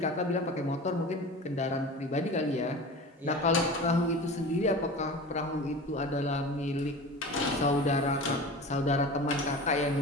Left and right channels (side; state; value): both; normal; correlation 0.34